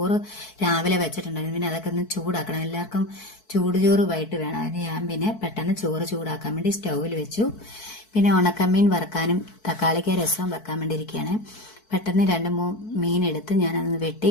രാവിലെ വെച്ചിട്ടുണ്ടായിരുന്നു. പിന്നെ അതൊക്കെ ഒന്ന് ചൂടാക്കണം. എല്ലാവർക്കും ചൂടുചോറ് വൈകിട്ട് വേണം. അതിന് ഞാൻ പിന്നെ പെട്ടെന്ന് ചോറ് ചൂടാക്കാൻ വേണ്ടി സ്റ്റൗവിൽ വെച്ചു. പിന്നെ ഉണക്കമീൻ വറുക്കാനും തക്കാളിക്ക രസവും വെക്കാൻ വേണ്ടി ഇരിക്കുകയാണ്. പെട്ടെന്ന് 2-3 മീൻ എടുത്ത് ഞാനതൊന്ന് വെട്ടി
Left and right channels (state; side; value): late; right; 4.6 ms